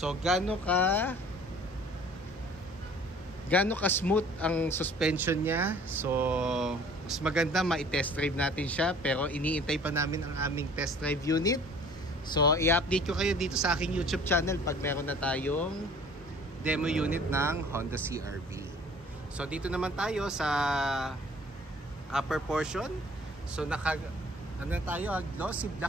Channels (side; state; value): both; normal; correlation 0.51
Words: gaano ka gaano ka-smooth ang suspension niya. So, mas maganda ma-test drive natin siya. Pero iniintay pa namin ang aming test drive unit. So, i-update ko kayo dito sa aking YouTube channel pag meron na tayong demo unit ng Honda CR-V. So, dito naman tayo sa upper portion. So, ano tayo, glossy